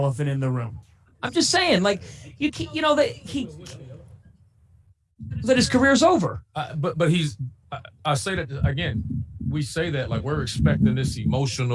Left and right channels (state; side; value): identical; both; correlation 1.00